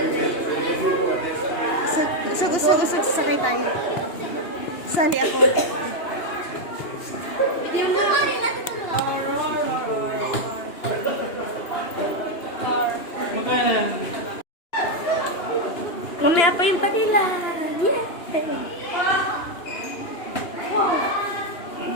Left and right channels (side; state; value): right; late; 2.9 ms